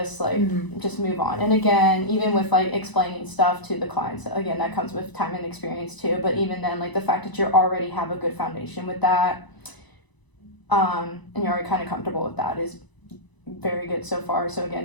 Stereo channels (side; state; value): right; late; 1.0 ms